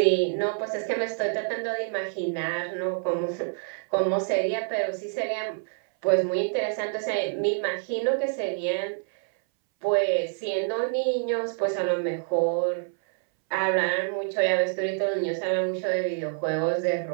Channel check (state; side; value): silent; left; 60 dB below the other